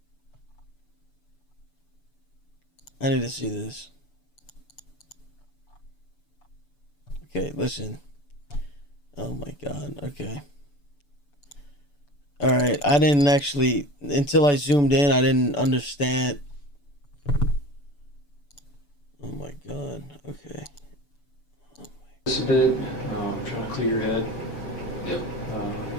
I need to see this. Okay, listen. Oh my God. Okay. All right. I didn't actually, until I zoomed in, I didn't understand. Oh my God. Okay. Just a bit. Trying to clear your head.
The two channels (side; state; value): right; late; 6.9 ms